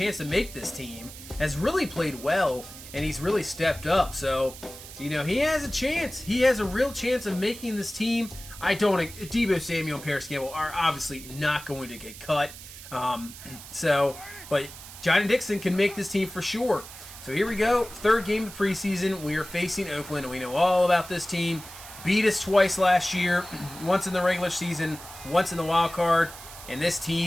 to make this team, has really played well, and he's really stepped up. So, he has a chance. He has a real chance of making this team. Deebo Samuel and Paris Campbell are obviously not going to get cut. But Johnny Dixon can make this team for sure. So here we go. 3rd game of the preseason. We are facing Oakland, and we know all about this team. Beat us twice last year, once in the regular season, once in the wild card. And this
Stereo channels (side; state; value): right; noise; hiss, 15 dB below the sound